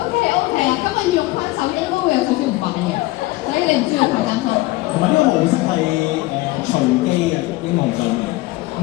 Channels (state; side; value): quieter; right; 19.7 dB